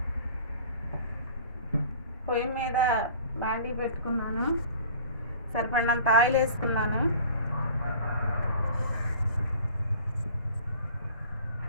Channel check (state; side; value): inverted; both; correlation -0.46